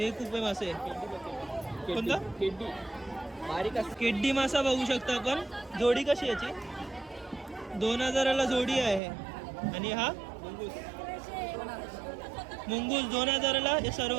कुपे मासे. कोणता? केड्डी मासा बघू शकता आपण. जोडी कशी याची? 2000ला जोडी आहे. आणि हा मुंगूस 2000ला हे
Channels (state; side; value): drops out; left; at 9.0 s